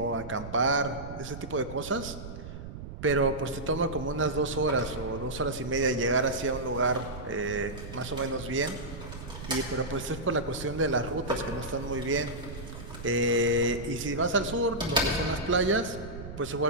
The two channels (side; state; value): right; noise; rumble, 11 dB below the sound